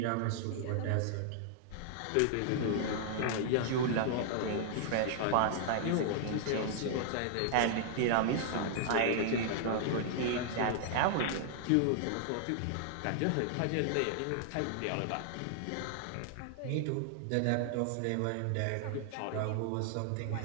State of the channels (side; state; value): both; different; correlation -0.01